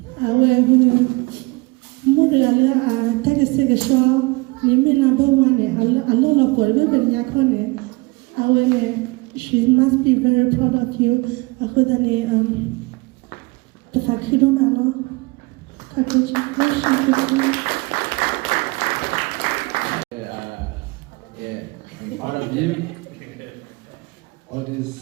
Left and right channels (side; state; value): left; quieter; 25.2 dB